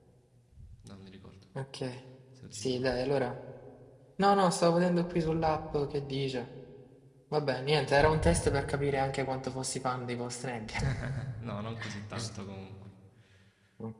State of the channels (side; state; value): both; identical; correlation 1.00